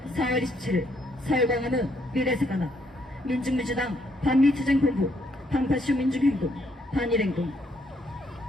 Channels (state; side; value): normal; both; correlation 0.72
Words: 4월 27일 서울 광화문 미래세관앞 민중민주당 반미투쟁본부 방파쇼 민중행동 반일행동.